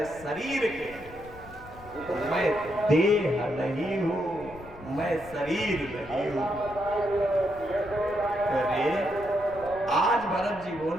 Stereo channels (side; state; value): left; noise; rumble, 19 dB below the sound